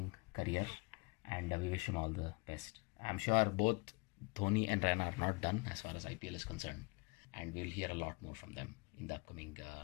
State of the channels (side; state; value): right; quieter; 27.8 dB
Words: career, and we wish him all the best. I'm sure both Dhoni and Raina are not done as far as IPL is concerned, and we'll hear a lot more from them in the upcoming